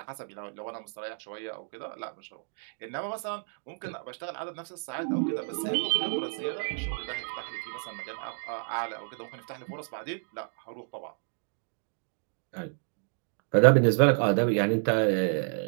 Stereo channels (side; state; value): left; silent; 57 dB below the other